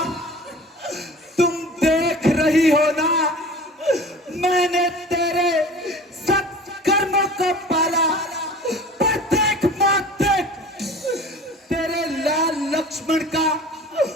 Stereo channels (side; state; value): both; normal; correlation 0.41